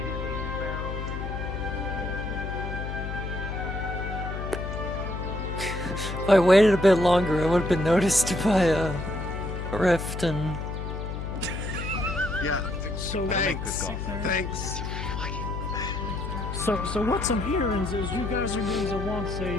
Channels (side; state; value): left; noise; hum, 5 dB below the sound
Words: If I waited a bit longer, I would have been noticed by a rift and... Yeah. So Thanks. So what I'm hearing is you guys are going to want